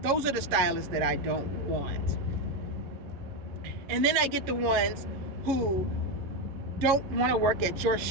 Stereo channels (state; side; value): late; left; 11 ms